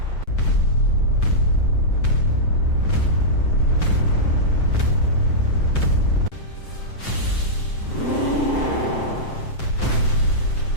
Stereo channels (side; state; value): right; late; 7.7 ms